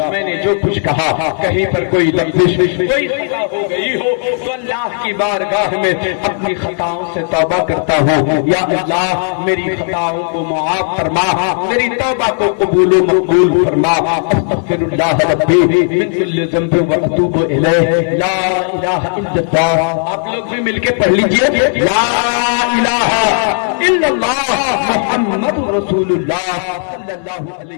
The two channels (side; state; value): right; silent; 68 dB below the other